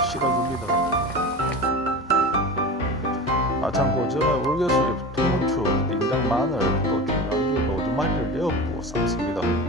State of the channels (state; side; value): normal; both; correlation 0.30